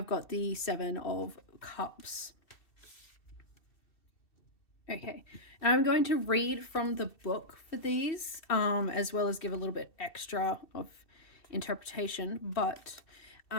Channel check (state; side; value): late; right; 2.7 ms